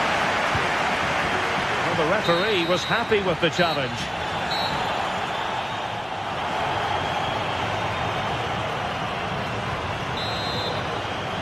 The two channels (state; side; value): identical; both; correlation 1.00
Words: Well, the referee was happy with the challenge.